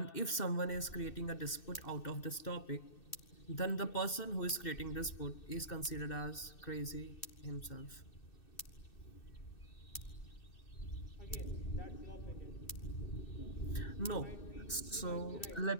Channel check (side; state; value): right; late; 2.6 ms